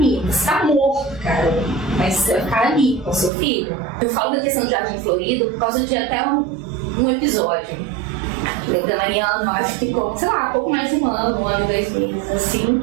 Você tá morto, cara, mas você vai ficar ali com seu filho. Eu falo da questão do Jardim Florido por causa de até um episódio. Da Mariana, acho que ficou, sei lá, pouco mais de um ano, 2 meses, assim.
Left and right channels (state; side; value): drops out; left; at 3.3 s